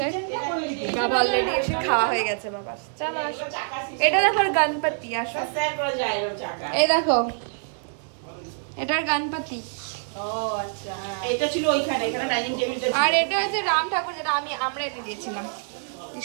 বাবা অলরেডি এসে খাওয়া হয়ে গেছে। বাবা চলো আসো, এটা দেখো গণপতি, আসো এই দেখো এটার গণপতি, আর এটা হচ্ছে রাম ঠাকুর, যেটা আমরা এনে দিয়েছিলাম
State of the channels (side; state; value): left; silent; 57 dB below the other